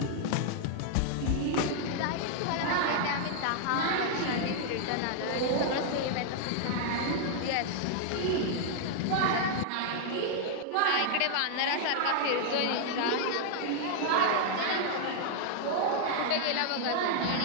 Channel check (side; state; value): both; different; correlation -0.01